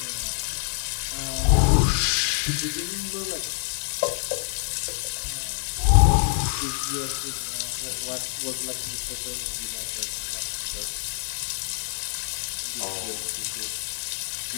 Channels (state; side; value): silent; right; digital silence